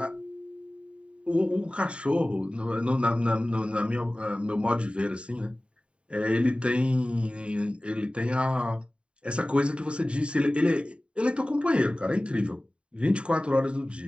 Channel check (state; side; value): late; left; 0.056 ms